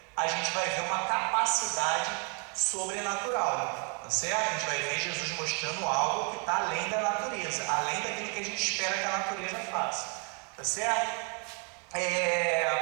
a gente vai ver uma capacidade sobrenatural, tá certo? A gente vai ver Jesus mostrando algo que está além da natureza, além daquilo que a gente espera que a natureza faça, tá certo?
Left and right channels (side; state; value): left; quieter; 37.7 dB